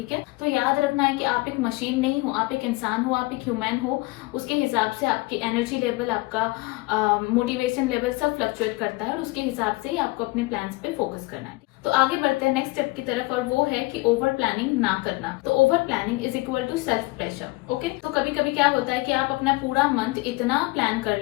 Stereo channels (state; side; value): quieter; right; 22.8 dB